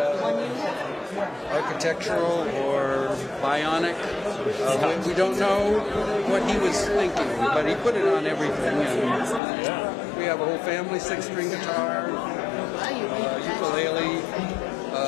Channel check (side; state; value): right; drops out; at 9.4 s